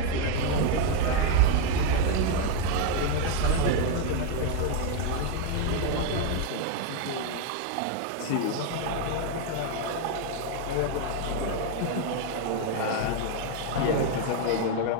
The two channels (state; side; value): different; both; correlation 0.01